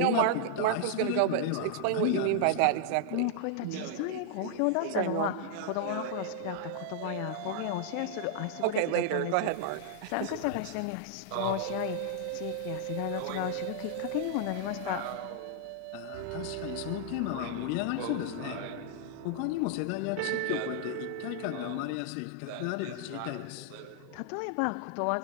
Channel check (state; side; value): different; both; correlation -0.01